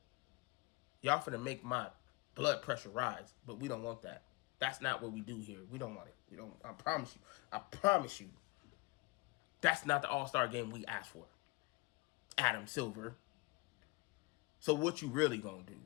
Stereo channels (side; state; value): right; quieter; 24.2 dB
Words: Y'all finna make my blood pressure rise, but we don't want that. That's not what we do here. We don't want it. We don't. I promise you. I promise you. That's not the All-Star game we asked for. Adam Silver. So what you really gonna do?